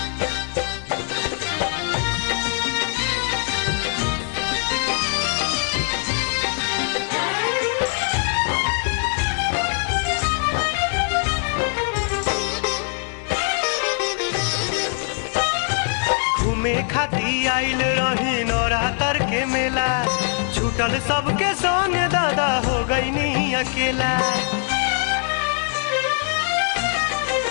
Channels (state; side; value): silent; right; 57 dB below the other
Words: घूमे खाती आइल रही नवरात्र के मेला, छूटल सबके संग दादा हो गई नी अकेला।